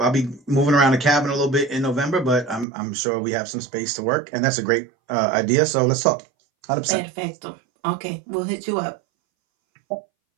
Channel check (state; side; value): drops out; left; at 2.7 s